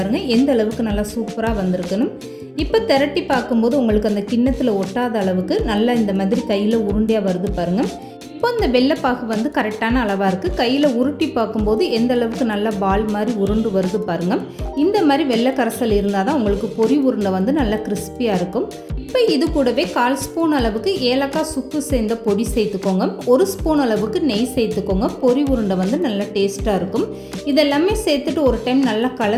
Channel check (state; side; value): identical; both; correlation 1.00